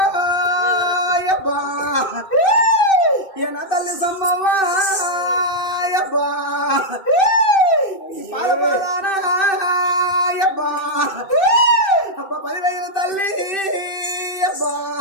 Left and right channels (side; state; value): right; late; 2.6 ms